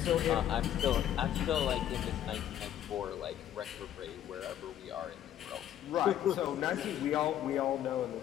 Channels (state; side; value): quieter; right; 11.2 dB